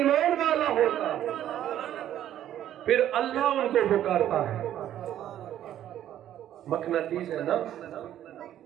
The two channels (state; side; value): quieter; left; 11.6 dB